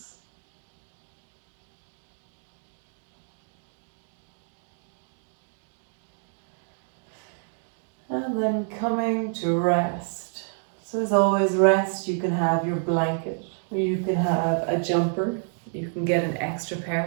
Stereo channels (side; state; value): left; silent; 59 dB below the other